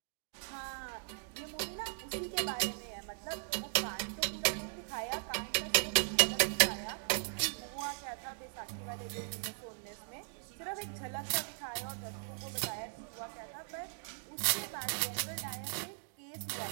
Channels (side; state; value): left; silent; digital silence